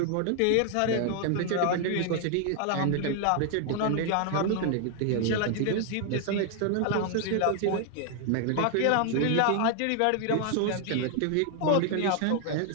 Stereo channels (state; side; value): different; both; correlation 0.00